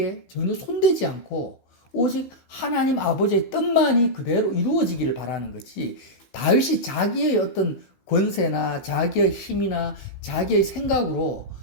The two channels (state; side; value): late; right; 16 ms